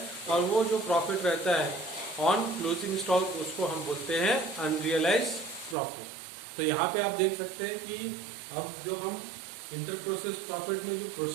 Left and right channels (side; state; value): left; drops out; at 5.8 s